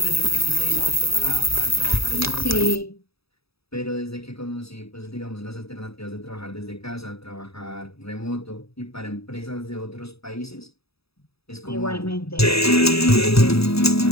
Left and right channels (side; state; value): right; late; 0.77 ms